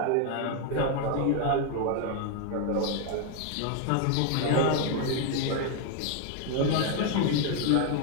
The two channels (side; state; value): both; different; correlation 0.01